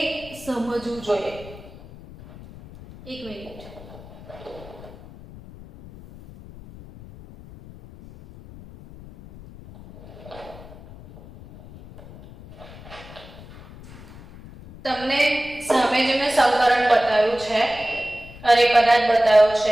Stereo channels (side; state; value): left; noise; rumble, 18 dB below the sound